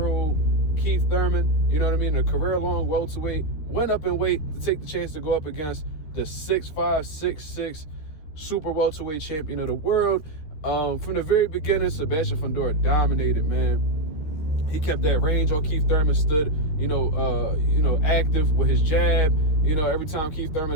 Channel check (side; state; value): right; late; 13 ms